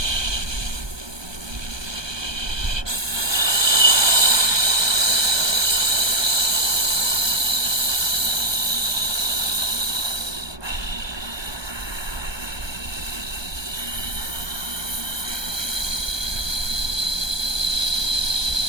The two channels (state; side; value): late; left; 1.2 ms